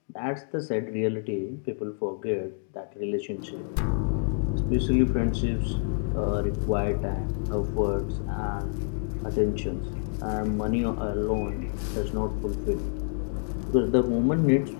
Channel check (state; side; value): silent; right; digital silence